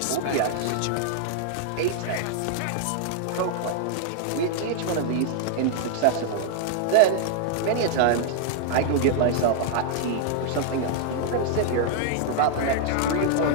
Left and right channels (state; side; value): different; both; correlation 0.00